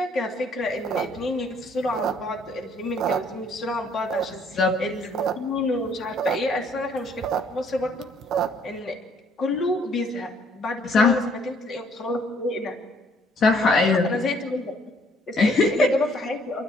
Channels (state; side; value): normal; both; correlation 0.63